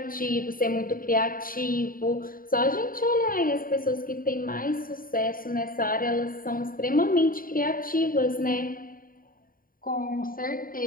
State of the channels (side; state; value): right; late; 0.41 ms